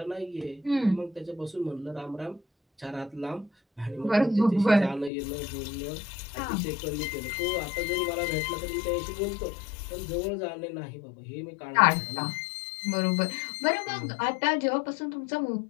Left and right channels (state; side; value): drops out; right; at 5.1 s